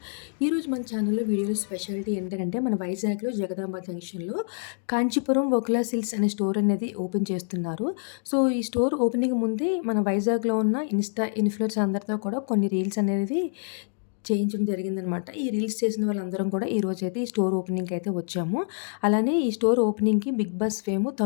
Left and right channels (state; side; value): silent; right; digital silence